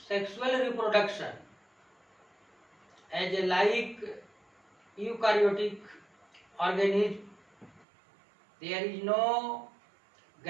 sexual reproduction as a like eukaryotic organism. There is no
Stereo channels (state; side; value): drops out; left; at 7.9 s